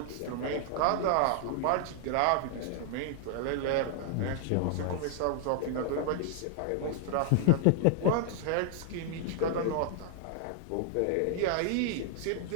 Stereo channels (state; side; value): different; both; correlation 0.00